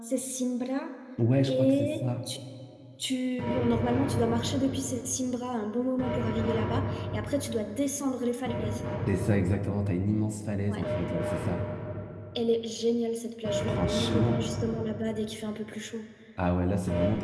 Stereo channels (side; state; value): both; identical; correlation 1.00